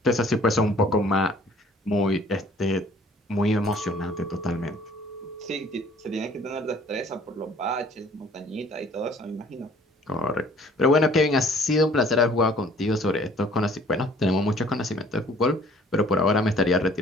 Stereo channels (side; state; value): both; normal; correlation 0.55